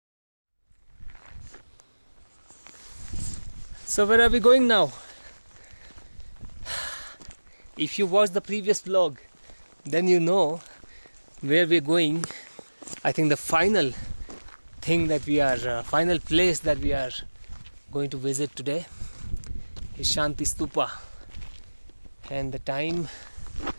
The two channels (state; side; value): inverted; both; correlation -1.00